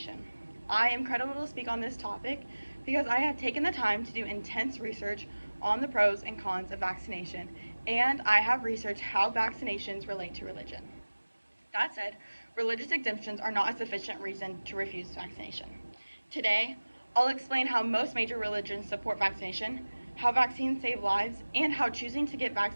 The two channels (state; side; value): inverted; both; correlation -1.00